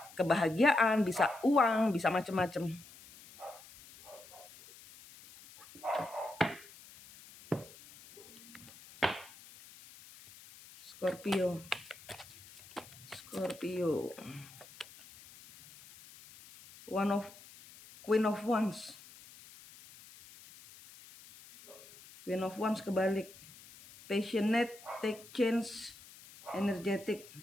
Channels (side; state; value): left; noise; hiss, 20 dB below the sound